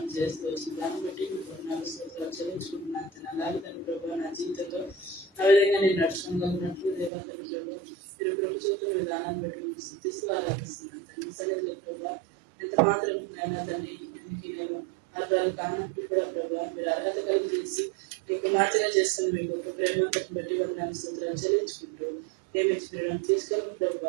చేస్తూ వచ్చింది. దాన్ని బట్టి మీకు 4 స్తోత్రాలు చెల్లించుకుంటున్నాను. అలాగే తండ్రి ప్రభు నా జీవితంలో ఆ విధంగా నేను నడుచుకోగలిగినట్లు దేవా తండ్రి ప్రభు మీరు కృప చూపుతున్న విధానాన్ని బట్టి మీకు సిద్ధిస్తూ ఆరాధిస్తున్నాను తండ్రి. సరిగ్గా ప్రభు ఎంత మాత్రం అయినా తండ్రి దీనికి నేను అర్థాలు కానప్పుడు కూడా ప్రభు మీరు అర్హత కలుగు చేసి మీకు మాత్రమే చేసుకుని మీ గొప్ప ప్రేమను బట్టి వారి నా స్తోత్రాలు చెల్లించుకుంటూ ప్రేమించడం తీసుకొని ప్రభు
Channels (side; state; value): left; drops out; at 7.1 s